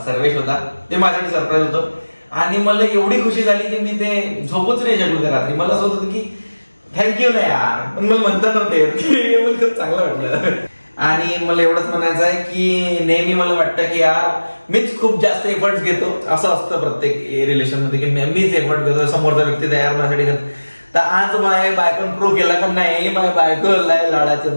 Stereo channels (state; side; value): inverted; both; correlation -1.00